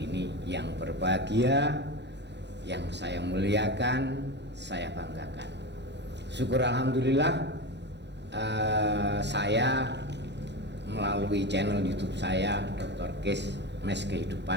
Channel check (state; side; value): late; left; 0.50 ms